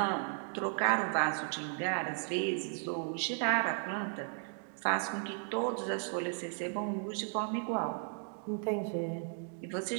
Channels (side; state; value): left; silent; 54 dB below the other